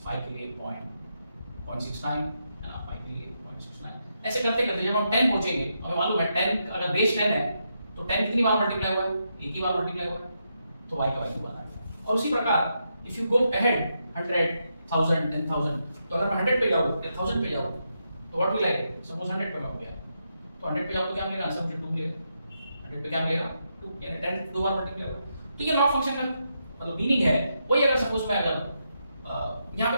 5 के लिए 0.69, है ना, 5 के लिए 0.69। ऐसे करते करते जब हम 10 पहुंचेंगे, हमें मालूम है 10 अगर बेस 10 है तो 10 कितनी बार मल्टीप्लाई हुआ है, एक ही बार मल्टीप्लाई हुआ है, तो y का वैल्यू बना है। और उसी प्रकार इफ यू गो अहेड 100, 1000, 10,000, तो अगर मैं 100 पे जाऊँ या 1000 पे जाऊँ तो what will I get, suppose 100 पे मैं हो गया तो 100 पे जाऊँ तो क्या मिलेगा, आंसर मुझे 2 मिलेगा। 100 पे क्या मिलेगा, 2, यानी 10 दो बार मल्टीप्लाई होगा। तो ये लॉग फंक्शन का मतलब मीनिंग है वही। अगर सपोज मैं अगर यहाँ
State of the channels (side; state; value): both; inverted; correlation -0.83